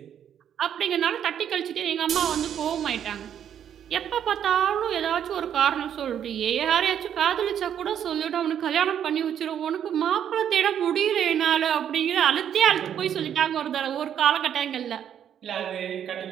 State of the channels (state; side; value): quieter; left; 9.3 dB